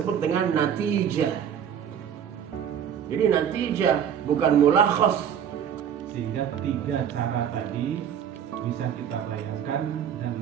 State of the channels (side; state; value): left; quieter; 8.7 dB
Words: dengan natijah. Jadi natijah bukan mulakhas. Sehingga 3 cara tadi bisa kita bayangkan dan